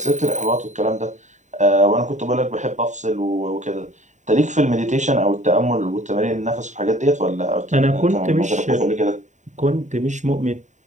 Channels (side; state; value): left; late; 0.35 ms